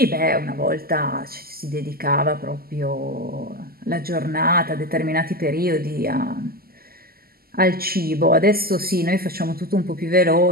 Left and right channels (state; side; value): late; left; 0.44 ms